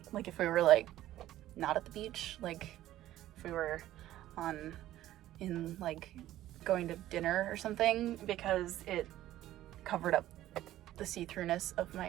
like if we were like not at the beach, like if we were in like going to dinner or something, because it covered up the see-throughness of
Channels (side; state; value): left; quieter; 14.0 dB